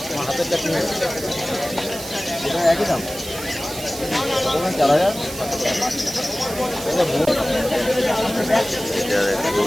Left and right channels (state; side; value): noise; right; hiss, 11 dB below the sound